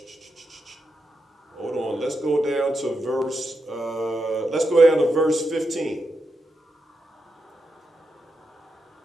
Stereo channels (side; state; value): both; normal; correlation 0.86